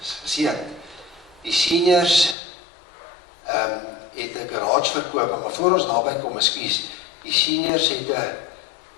geseën. Die seniors het 'n garage verkoop, maar voor ons daarby kom, ekskuus, die seniors het 'n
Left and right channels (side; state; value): right; drops out; at 2.4 s